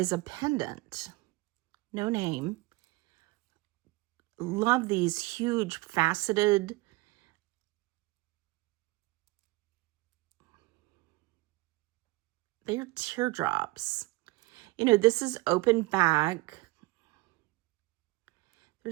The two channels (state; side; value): quieter; left; 21.4 dB